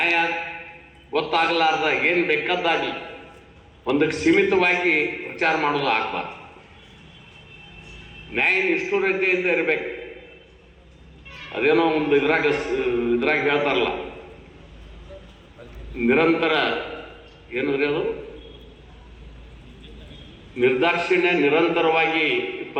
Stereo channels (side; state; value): both; identical; correlation 1.00